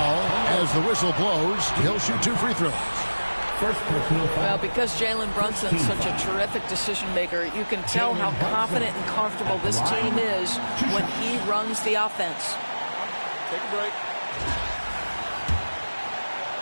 as the whistle blows. He'll shoot 2 free throws. Well, because Jalen Brunson's such a terrific decision maker, you can tell how confident and comfortable this team is when he runs the offense. Take a break.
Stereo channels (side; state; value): both; inverted; correlation -1.00